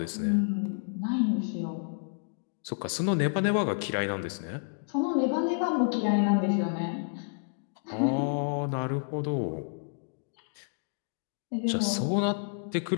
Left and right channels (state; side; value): silent; right; digital silence